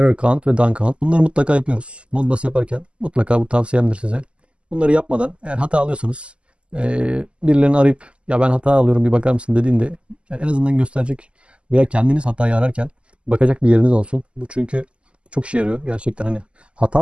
count ve done count. Bunları mutlaka yapıyoruz. Modbus yaparken mutlaka, bu tavsiyemdir size. Bunları yapmadan eğer hata alıyorsanız birilerini arayıp ya ben hata alıyorum bir bakar mısın dediğinde yani en azından gösterecek veya kendiniz hatayı ararken bakacak bir yeriniz olsun. Bu çünkü çok işe yarıyor gerçekten, hani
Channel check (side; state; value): left; late; 0.054 ms